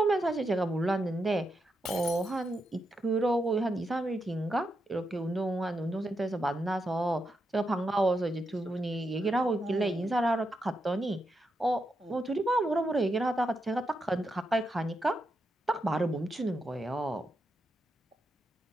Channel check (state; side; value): normal; both; correlation 0.84